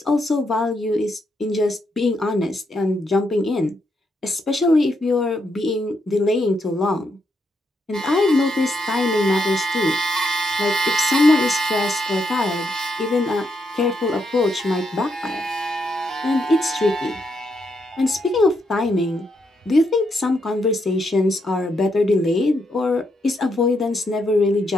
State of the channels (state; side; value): normal; both; correlation 0.79